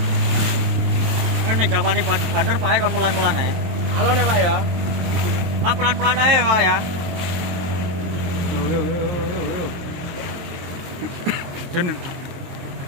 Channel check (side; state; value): left; late; 23 ms